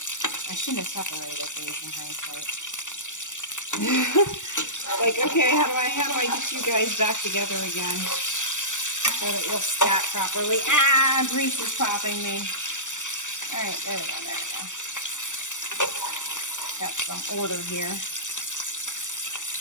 I shouldn't have separated these in hindsight. Like, okay, how do I get you guys back together again so that you'll stack properly? Ah, grease is popping me. All right, there we go. Got some order here,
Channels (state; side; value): late; right; 0.85 ms